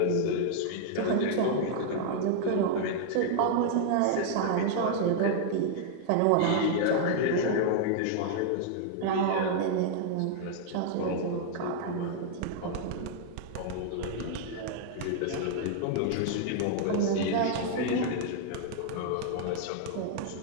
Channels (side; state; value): both; different; correlation -0.01